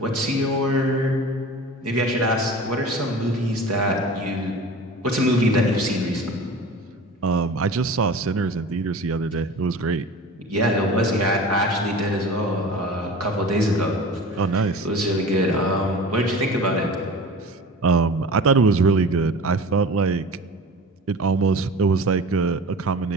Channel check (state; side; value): normal; both; correlation 0.37